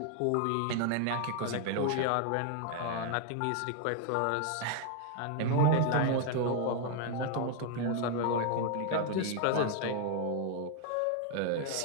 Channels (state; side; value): different; both; correlation 0.00